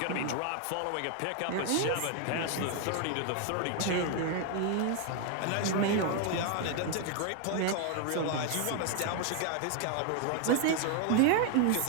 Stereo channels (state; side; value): different; both; correlation 0.01